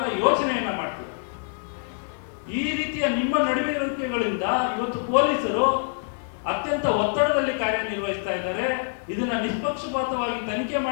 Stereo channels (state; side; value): silent; right; digital silence